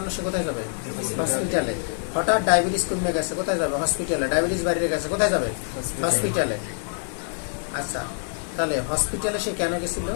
সে কোথায় যাবে? হসপিটালে। হঠাৎ ডায়াবেটিস কমে গেছে কোথায় যাবে? হসপিটালে। ডায়াবেটিস বাইরে গেছে কোথায় যাবে? হসপিটালে। আচ্ছা, তাহলে হসপিটালে সে কেন গেছিল?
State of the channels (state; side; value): silent; right; 62 dB below the other